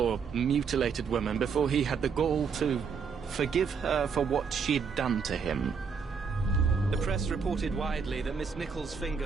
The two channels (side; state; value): left; quieter; 5.9 dB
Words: mutilated woman before he had the gall to forgive her for what she'd done to him. The press reported widely that Miss Nichols'